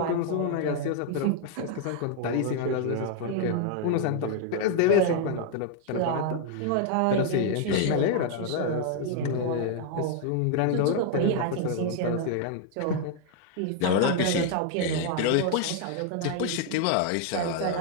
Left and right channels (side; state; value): both; different; correlation 0.00